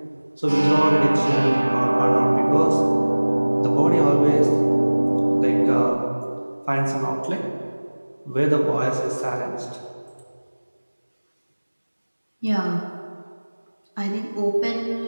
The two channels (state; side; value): inverted; both; correlation -1.00